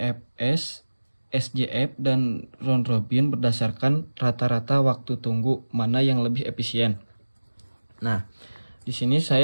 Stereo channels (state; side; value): inverted; both; correlation -1.00